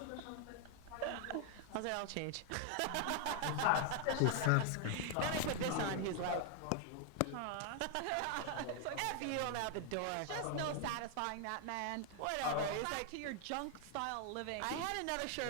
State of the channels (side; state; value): both; different; correlation 0.00